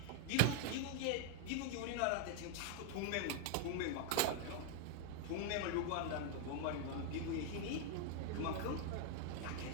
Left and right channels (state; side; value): different; both; correlation 0.00